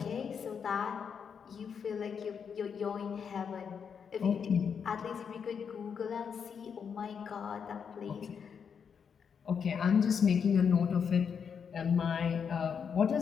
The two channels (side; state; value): right; quieter; 6.8 dB